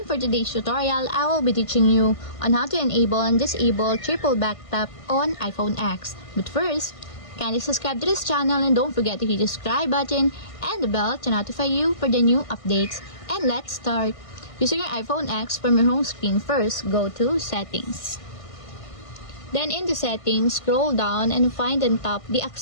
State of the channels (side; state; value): right; late; 1.5 ms